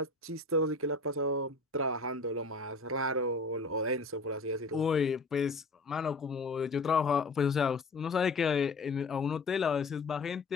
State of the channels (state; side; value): quieter; right; 3.4 dB